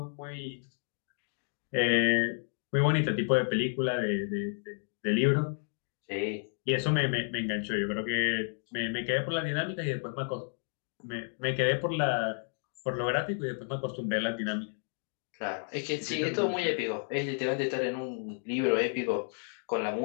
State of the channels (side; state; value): right; silent; 57 dB below the other